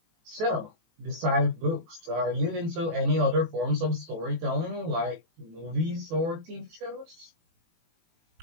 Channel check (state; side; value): late; left; 18 ms